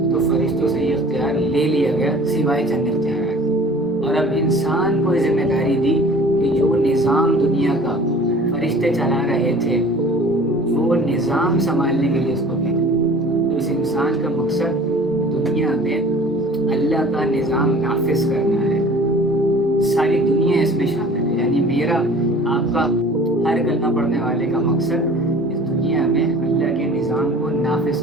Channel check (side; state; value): both; normal; correlation 0.46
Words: تو فرشتوں سے یہ اختیار لے لیا گیا، سوائے چند اختیارات، اور اب انسان کو یہ ذمہ داری دی کہ جو نظام دنیا کا فرشتے چلا رہے تھے وہ نظام سنبھالنے کے لیے اس کو بھیجا۔ تو اس انسان کا مقصد دنیا میں اللہ کا نظام نافذ کرنا ہے، ساری دنیا اس میں شامل ہے، یعنی میرا آپ کا ہر کلمہ پڑھنے والے کا مقصد اس دنیا میں اللہ کے نظام کو نافذ